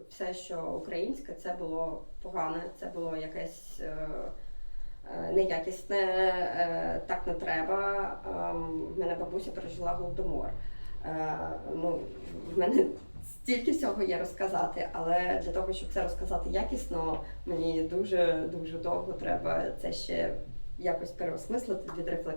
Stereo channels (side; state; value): both; inverted; correlation -1.00